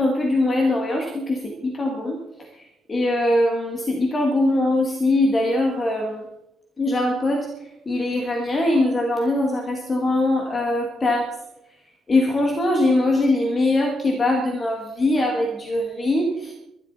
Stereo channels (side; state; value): both; normal; correlation 0.83